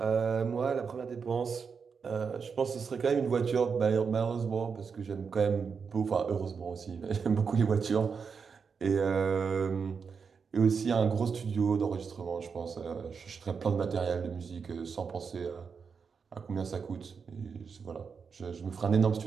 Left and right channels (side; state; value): left; quieter; 5.8 dB